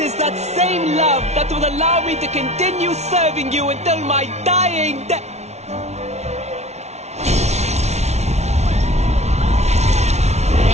that same love that will allow me to continue serving you until my dying day.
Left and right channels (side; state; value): left; late; 0.32 ms